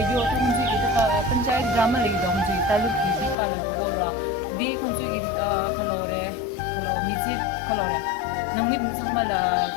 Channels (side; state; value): right; drops out; at 3.4 s